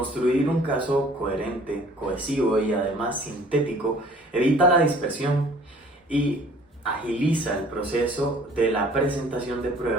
un caso coherente, cohesivo y además sintético evita la dispersión y agiliza el proceso de la presentación de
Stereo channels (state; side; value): normal; both; correlation 0.53